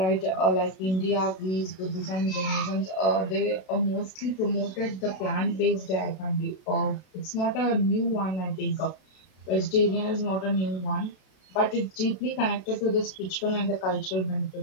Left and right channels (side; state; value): right; late; 32 ms